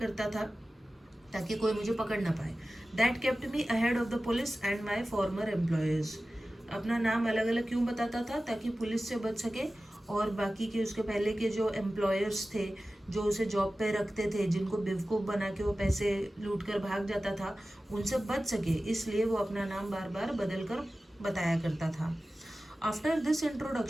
था ताकि कोई मुझे पकड़ ना पाए। That kept me ahead of the police and my farmer employers. अपना नाम अलग अलग क्यों बताता था? ताकि पुलिस से बच सके और बाकी के उसके पहले के जो एम्प्लॉयर्स थे, जो उसे जॉब पे रखते थे, जिनको बेवकूफ़ बना के वो पैसे लूट कर भाग जाता था, उनसे बच सके, इसलिए वो अपना नाम बार बार बदल कर बताया करता था। After this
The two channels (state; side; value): normal; both; correlation 0.95